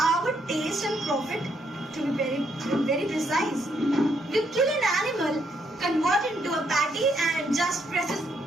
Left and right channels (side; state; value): both; normal; correlation 0.74